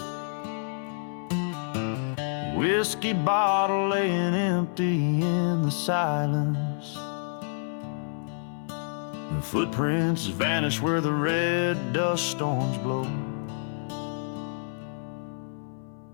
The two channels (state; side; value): silent; right; 59 dB below the other